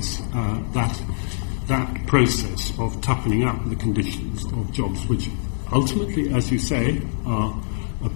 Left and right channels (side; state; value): right; silent; 61 dB below the other